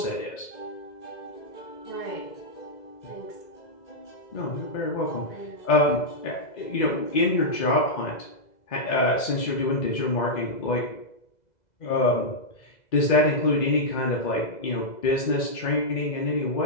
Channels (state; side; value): late; right; 2.0 ms